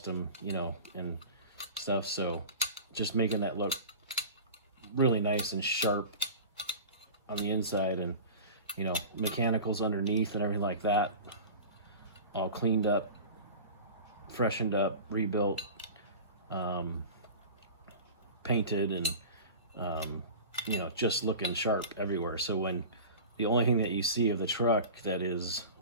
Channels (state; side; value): inverted; both; correlation -0.34